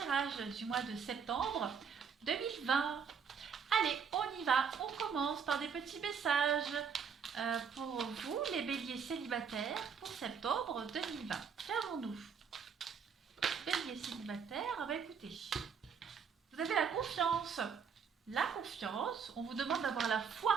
du mois de septembre 2020. Allez, on y va, on commence par des petits messages pour vous, les béliers célibataires, pour septembre 2020. Qu'avons-nous? Bélier célibataire, écoutez, vous avez la confiance. La confiance, on vous demande d'avoir la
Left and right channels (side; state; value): left; quieter; 6.5 dB